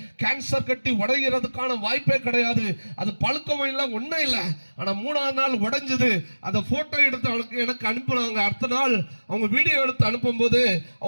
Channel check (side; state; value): both; inverted; correlation -1.00